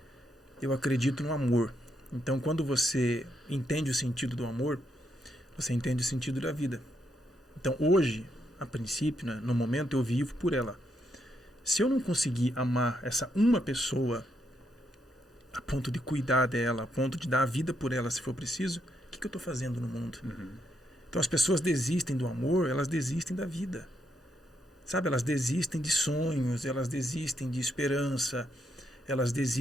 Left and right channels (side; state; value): both; normal; correlation 0.79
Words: Eu acredito no amor. Então, quando você entende o sentido do amor, você entende o sentido da vida. Então, hoje, a princípio, né, no momento, eu vivo por ela. Se eu não conseguir amar essa uma pessoa a ponto de cuidar dela, a ponto de dar a vida por ela, se for preciso, o que eu estou fazendo no mundo? Então, as pessoas desistem do amor, elas desistem da vida. Sabe, elas desistem de sonhos, elas desistem de esperança, elas